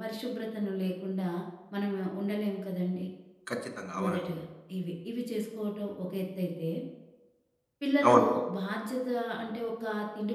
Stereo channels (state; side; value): identical; both; correlation 1.00